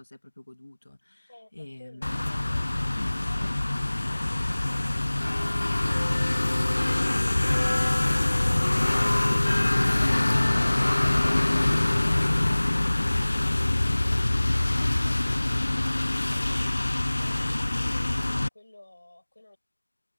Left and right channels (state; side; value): inverted; both; correlation -1.00